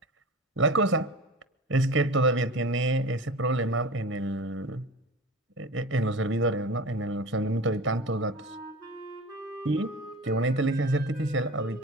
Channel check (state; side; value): normal; both; correlation 0.34